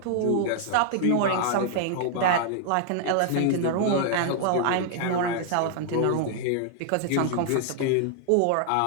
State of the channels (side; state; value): both; different; correlation 0.00